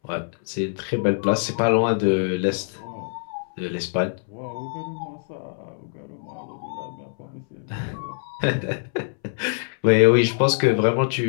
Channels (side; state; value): right; silent; 62 dB below the other